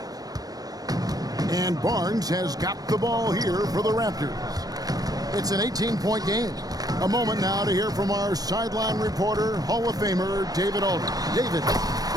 And Barnes has got the ball here for the Raptors. It's an 18-point game. A moment now to hear from our sideline reporter, Hall of Famer David Aldridge. David.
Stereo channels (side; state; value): left; late; 0.18 ms